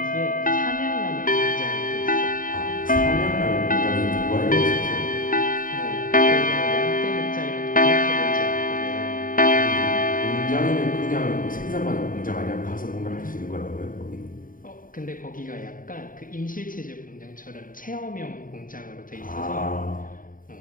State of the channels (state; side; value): late; right; 0.40 ms